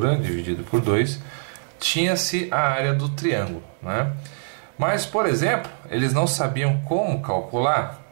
dividido por 2, tinha-se a área do triângulo, né? Mas, por exemplo, eles não sabiam como calcular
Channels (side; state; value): left; silent; digital silence